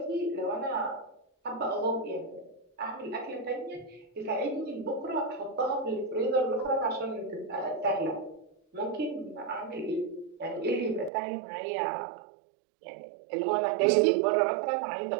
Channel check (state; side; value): drops out; left; at 11.1 s